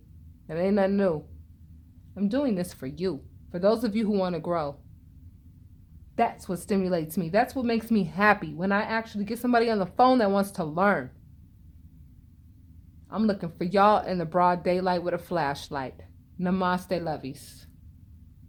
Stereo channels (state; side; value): identical; both; correlation 1.00